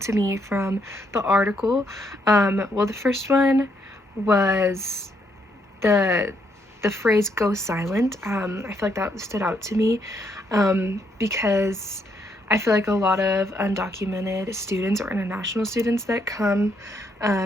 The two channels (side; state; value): both; normal; correlation 0.74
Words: to me from the article. Well, the first one was the the phrase "go silent." I feel like that stood out to me because I feel like a lot of undocumented students or international students that come